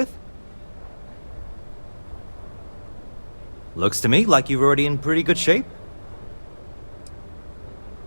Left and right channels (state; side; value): inverted; both; correlation -1.00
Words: Looks to me like you're already in pretty good shape.